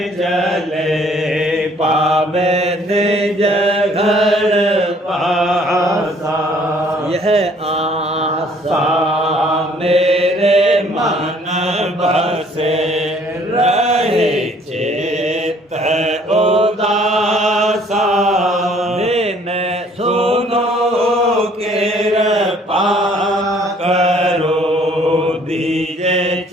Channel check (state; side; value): normal; both; correlation 0.59